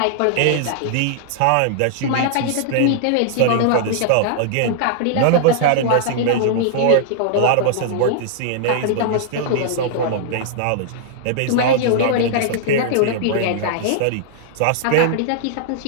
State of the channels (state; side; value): different; both; correlation -0.01